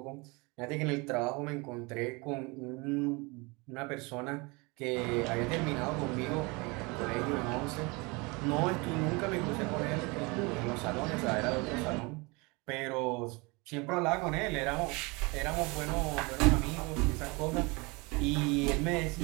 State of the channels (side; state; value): left; quieter; 27.1 dB